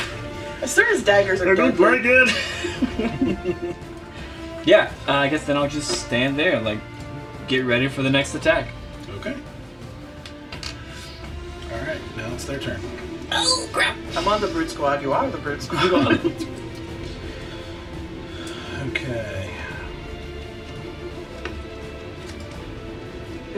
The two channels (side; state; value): both; identical; correlation 1.00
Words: As soon as daggers are dead. good. Yeah, I guess then I'll just stand there and like get ready for the next attack. Okay. All right, now it's their turn. Oh crap! I'm on the brute squad. You are the brute squad. Okay.